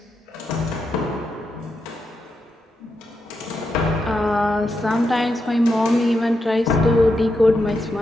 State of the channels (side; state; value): both; normal; correlation 0.85